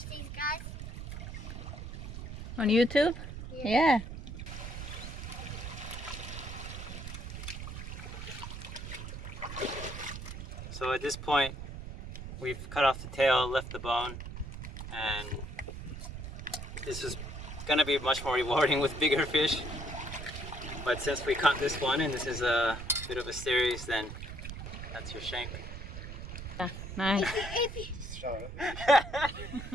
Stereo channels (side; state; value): right; noise; rumble, 9 dB below the sound